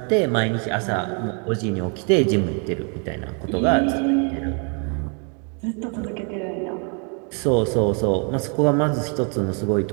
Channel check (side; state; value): left; quieter; 38.6 dB